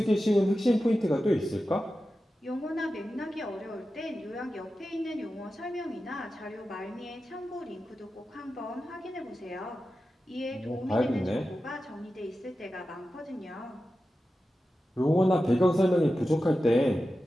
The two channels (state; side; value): normal; both; correlation 0.92